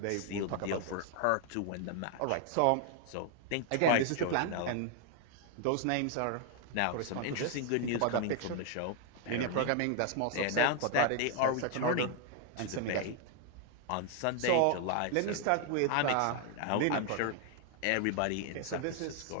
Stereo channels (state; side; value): different; both; correlation 0.00